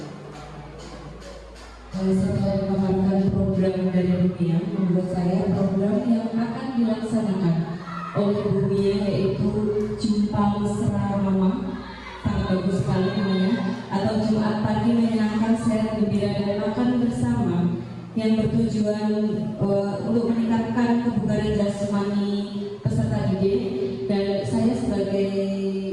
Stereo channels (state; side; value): identical; both; correlation 1.00